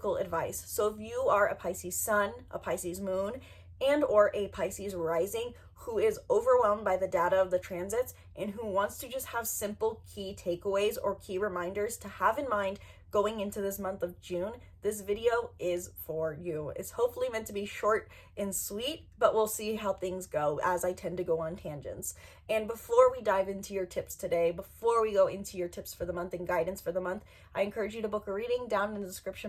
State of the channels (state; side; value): identical; both; correlation 1.00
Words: advice. So if you are a Pisces sun, a Pisces moon, and or a Pisces rising who is overwhelmed by the data of the transits and who wants to just have simple key takeaways or key reminders to have in mind going into this month of June, this video is for you. It's hopefully meant to be short and sweet, but we'll see how things go as I tend to go on tangents. And before we dive into your tips today, before we go into your tips for the month and guidance for the month, I encourage you to book a reading down in the